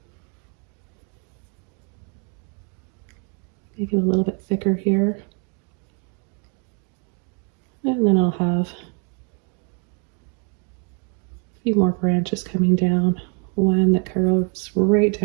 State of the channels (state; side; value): quieter; left; 37.8 dB